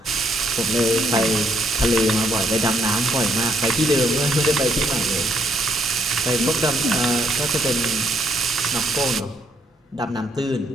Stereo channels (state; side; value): normal; both; correlation 0.71